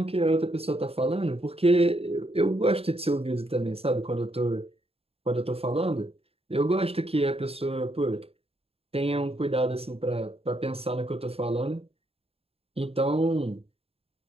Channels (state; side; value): late; left; 0.28 ms